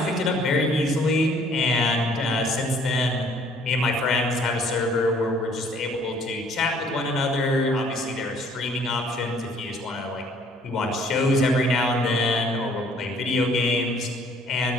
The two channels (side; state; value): both; normal; correlation 0.59